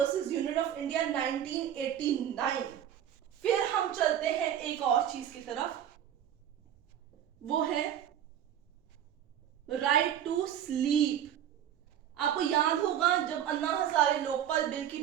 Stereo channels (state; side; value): quieter; left; 10.2 dB